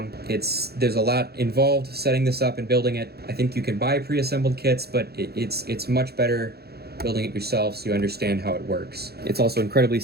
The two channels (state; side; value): late; left; 0.46 ms